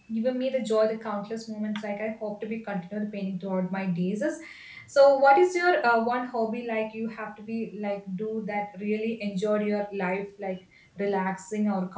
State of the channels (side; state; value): both; identical; correlation 1.00